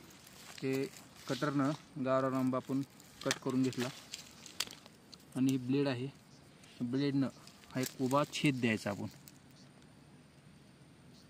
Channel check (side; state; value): both; identical; correlation 1.00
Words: ते कटरनं गावरान आंबा आपण कट करून घेतला आणि ब्लेड आहे, ब्लेडनं हा एक उभा छेद द्यायचा आपण।